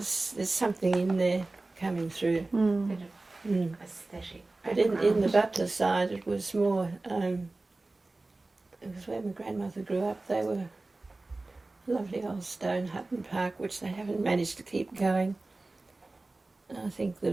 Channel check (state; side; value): quieter; left; 3.1 dB